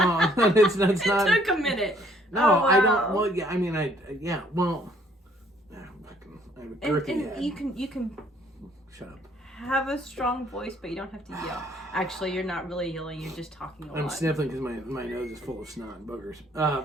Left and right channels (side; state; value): both; normal; correlation 0.63